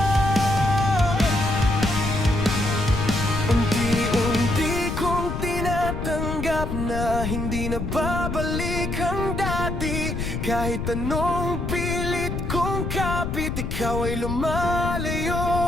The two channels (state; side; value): noise; left; rumble, 3 dB below the sound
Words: Unti-unti kong tinatanggap na hindi na babalik ang dati. Kahit anong pilit kong kapit, ikaw ay